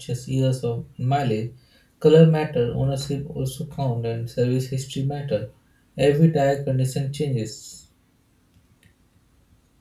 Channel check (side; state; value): both; identical; correlation 1.00